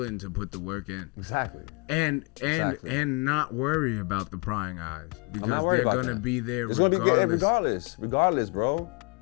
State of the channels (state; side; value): quieter; right; 30.2 dB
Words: to put the work in. Exactly. And not worry about the prying eyes, because they're gonna be there it's regardless. Gonna be there regardless, bro.